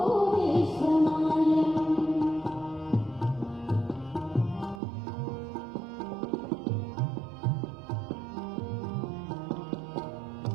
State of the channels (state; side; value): drops out; left; at 4.8 s